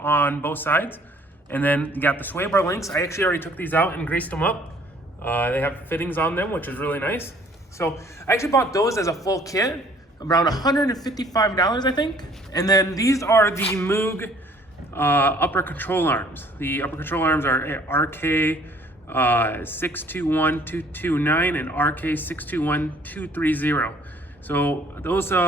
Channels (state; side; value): normal; both; correlation 0.58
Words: both sides. And then you got the sway bar links. I actually already took these out and greased them up. They have fittings on them, which is really nice. So I actually bought those as a full kit, around $155, I think. And then these are the Moog upper control arms. The upper control arms are RK 621229 and RK 621230. So those